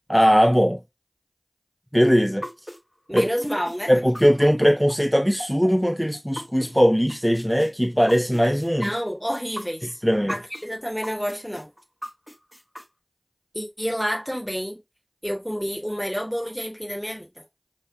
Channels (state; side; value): identical; both; correlation 1.00